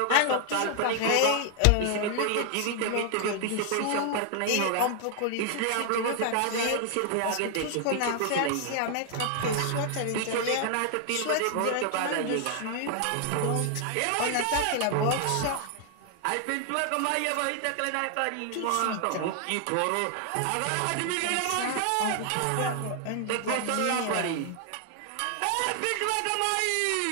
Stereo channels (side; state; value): both; different; correlation 0.00